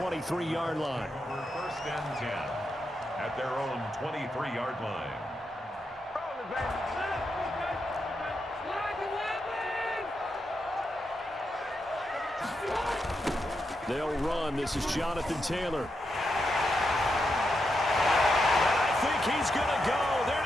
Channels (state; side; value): normal; both; correlation 0.85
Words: line. First and 10 at their own 23-yard line. They'll run. This is Jonathan Taylor. I think he's going to go. They're